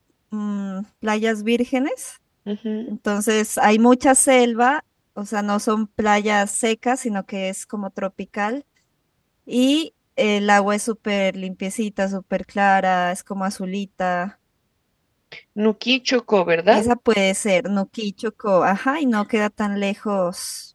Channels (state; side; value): identical; both; correlation 1.00